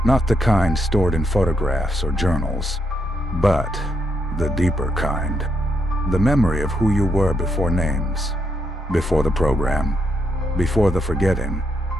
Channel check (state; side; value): normal; both; correlation 0.78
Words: Not the kind stored in photographs or journals, but the deeper kind. The memory of who you were before names, before the program, before the forgetting.